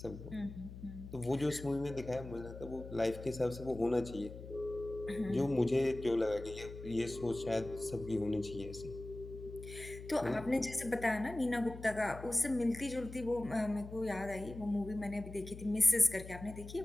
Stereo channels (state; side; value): noise; left; hum, 12 dB below the sound